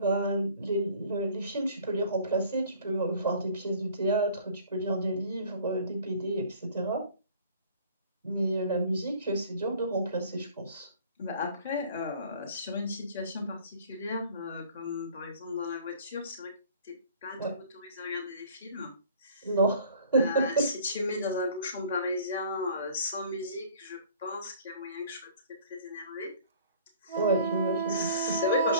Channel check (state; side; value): inverted; both; correlation -0.51